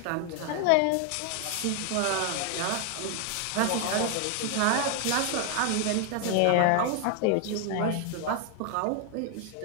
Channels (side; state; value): both; different; correlation 0.01